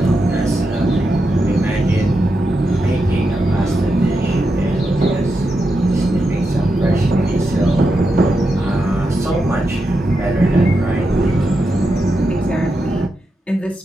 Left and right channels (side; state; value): both; normal; correlation 0.86